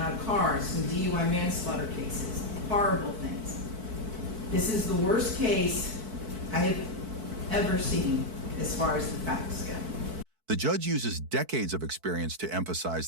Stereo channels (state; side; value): late; left; 4.6 ms